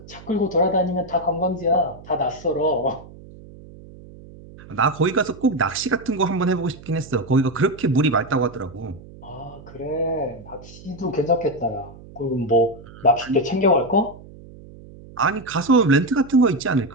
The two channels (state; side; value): noise; right; hum, 19 dB below the sound